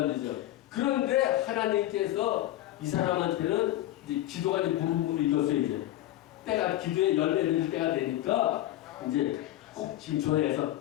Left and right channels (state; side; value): quieter; right; 14.5 dB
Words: 되죠. 그런데 하나님께서 이 사람한테는 이제 기도가 이제 무릎을 이뤘어요. 이제 때가 기도의 열매를 때가 되니까 이제 꼭 지금 전화해서